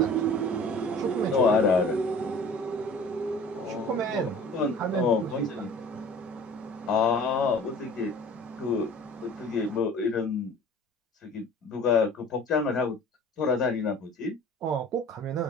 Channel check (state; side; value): normal; both; correlation 0.46